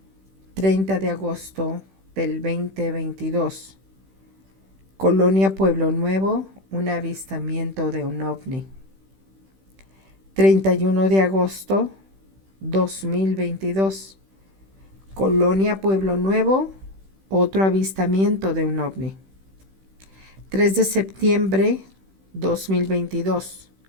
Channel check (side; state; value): left; late; 16 ms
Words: 30 de agosto del 2022. Colonia Pueblo Nuevo, un avistamiento de un ovni. 31 de agosto 2022. Colonia Pueblo Nuevo, otro avistamiento de un ovni. 3 de septiembre 2022.